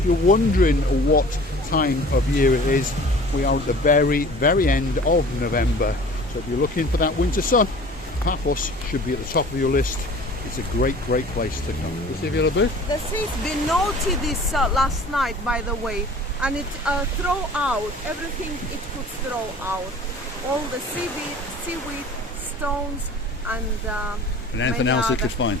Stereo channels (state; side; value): normal; both; correlation 0.45